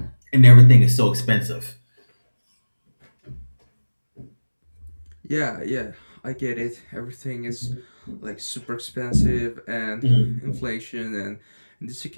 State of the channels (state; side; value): inverted; both; correlation -1.00